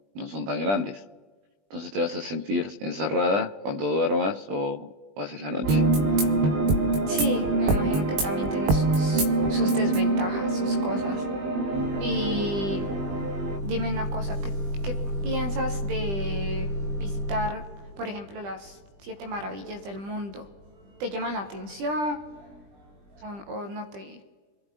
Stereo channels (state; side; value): late; left; 20 ms